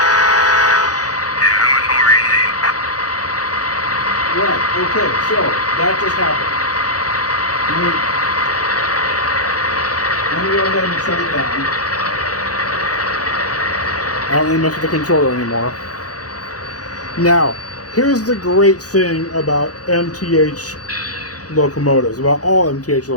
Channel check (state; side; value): late; right; 0.68 ms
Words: Right, okay, so that just happened. Let me go ahead and shut it down. I don't really mess with the controller anymore. Now, here's the great thing about MTH locomotives, about all MTH